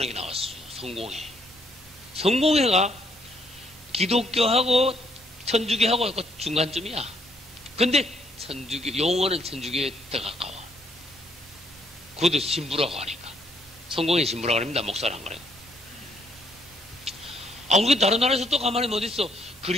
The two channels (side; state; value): both; normal; correlation 0.69